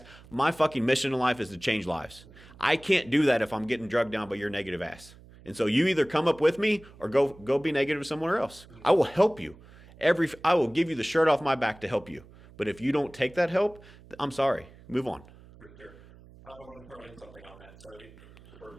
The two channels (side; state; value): right; noise; hum, 22 dB below the sound